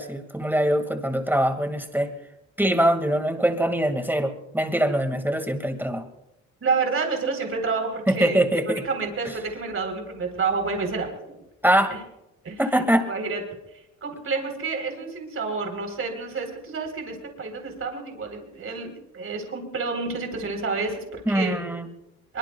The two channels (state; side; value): normal; both; correlation 0.56